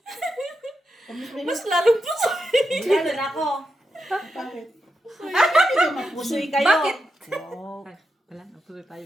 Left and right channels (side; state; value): both; normal; correlation 0.87